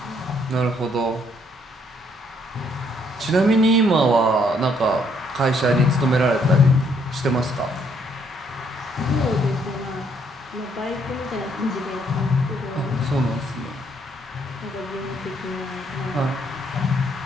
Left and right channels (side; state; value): both; normal; correlation 0.69